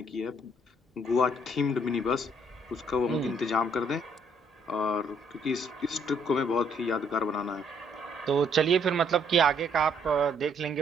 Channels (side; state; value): both; normal; correlation 0.67